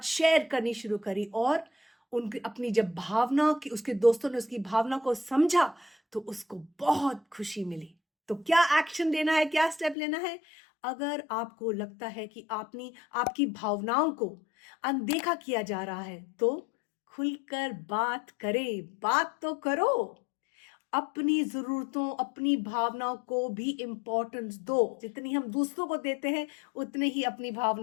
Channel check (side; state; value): right; drops out; at 10.0 s